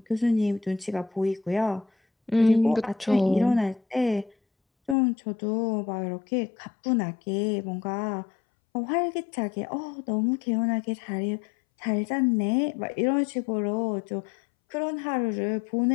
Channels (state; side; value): drops out; right; at 5.0 s